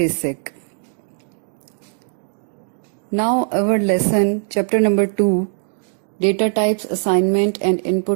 Now our lesson, chapter number 2, data types, assignment and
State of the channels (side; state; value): left; silent; digital silence